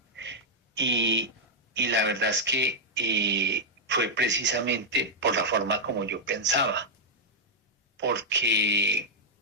y, y la verdad es que fue precisamente por la forma como yo pensaba, porque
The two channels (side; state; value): both; normal; correlation -0.04